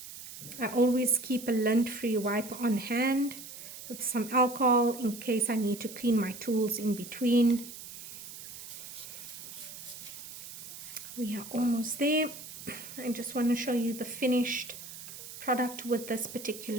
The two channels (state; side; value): noise; right; hiss, 12 dB below the sound